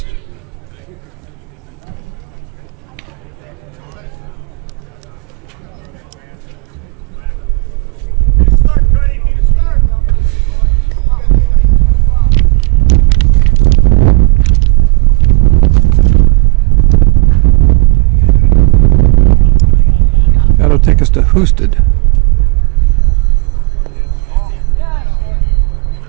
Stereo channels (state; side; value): quieter; left; 29.6 dB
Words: That'll take us to Husted.